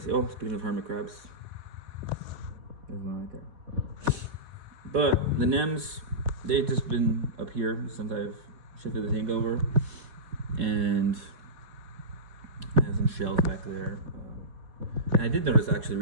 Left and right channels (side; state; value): left; late; 4.1 ms